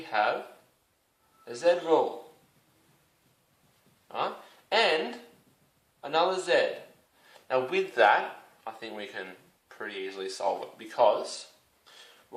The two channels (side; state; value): both; identical; correlation 1.00